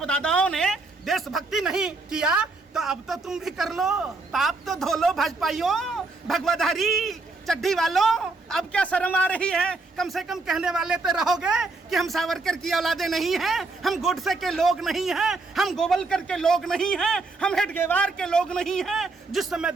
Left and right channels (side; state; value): left; quieter; 3.6 dB